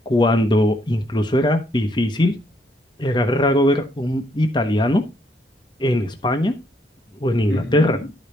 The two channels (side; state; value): both; normal; correlation 0.72